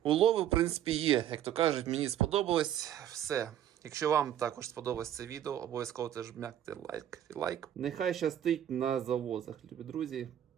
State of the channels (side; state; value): left; quieter; 10.9 dB